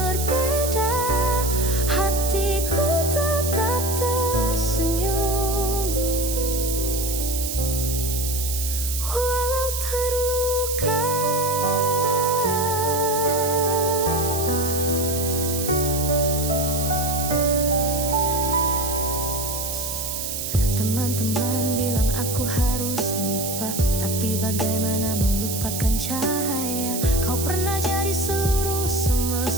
Hatiku tetap tersenyum, walau terluka. Teman-teman bilang aku harus lupa, tapi bagaimana melupakan cahaya? Kau pernah jadi seluruh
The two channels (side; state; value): right; noise; hiss, 4 dB below the sound